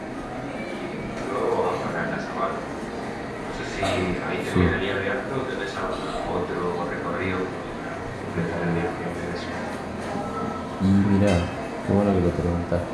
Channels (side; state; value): both; identical; correlation 1.00